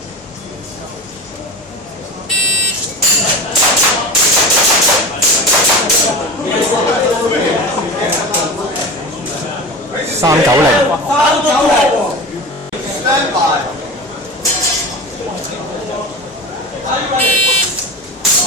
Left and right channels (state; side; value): normal; both; correlation 0.30